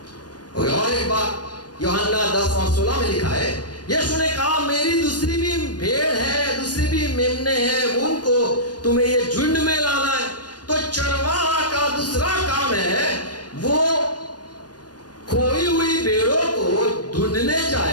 और एक बात यूहन्ना 10 और 16 में लिखा है, यीशु ने कहा, मेरी दूसरी भी भेड़ है, दूसरी भी मेमने हैं, उनको तुम्हें ये झुंड में लाना है। तो चरवाहा का दूसरा काम है, वो खोई हुई भेड़ों को ढूंढने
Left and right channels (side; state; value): right; late; 0.69 ms